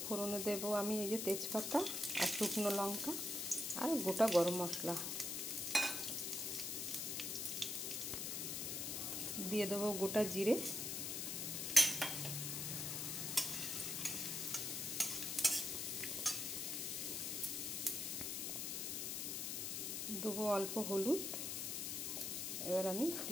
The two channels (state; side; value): noise; left; hiss, 2 dB below the sound